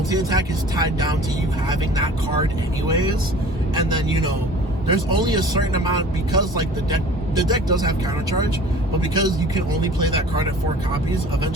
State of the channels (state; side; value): normal; both; correlation 0.45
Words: is tied down to you having that card anyways, and then there's only a certain amount, because like the deck does have counter charge, but because you can only play that card at 4 copies,